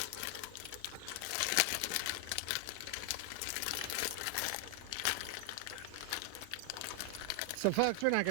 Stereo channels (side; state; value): both; different; correlation 0.00